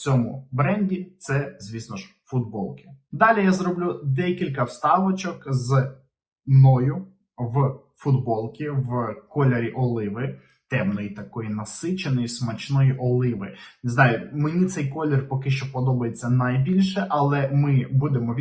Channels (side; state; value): both; identical; correlation 1.00